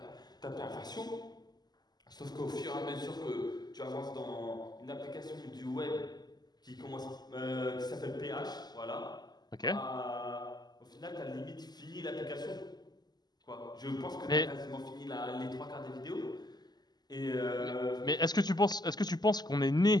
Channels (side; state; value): right; late; 0.20 ms